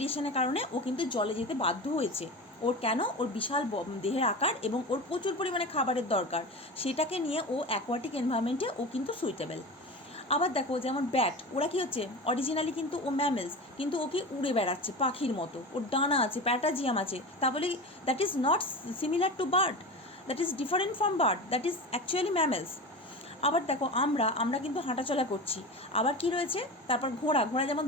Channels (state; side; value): normal; both; correlation 0.28